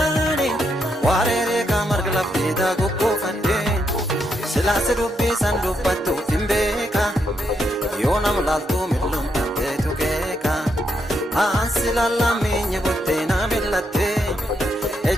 warere kamar glafte da goggo fadde silas dubbi san dubbattu timbeka yonam laltu midlum tatte tukeka ansilalla menye botte na millate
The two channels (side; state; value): both; normal; correlation 0.79